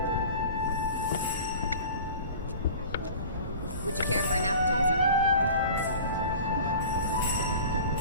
Would you care for an appetizer?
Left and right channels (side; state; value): both; inverted; correlation -0.40